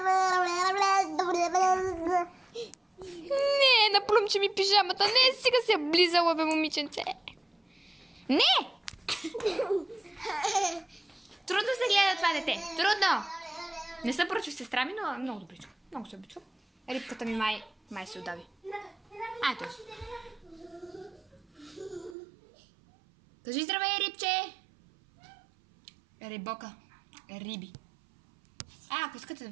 Не, наплюмче ми пижамата. Не, сега се е близала, бе, момиченце. Не! Трудно се гледа това дете. Трудно! Не съм поръчва сестра ми, но много добричка. Много се обичам. Рибката ми май се удави. Ето. Кажи здравей, рибче! Рибока. Риби. Ако искате да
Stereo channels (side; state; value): left; drops out; at 22.2 s